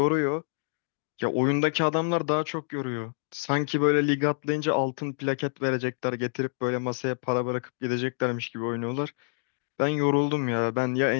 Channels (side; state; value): right; silent; digital silence